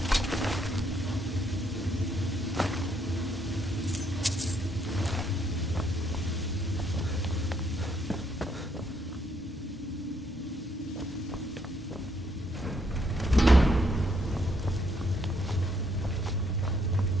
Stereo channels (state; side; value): normal; both; correlation 0.71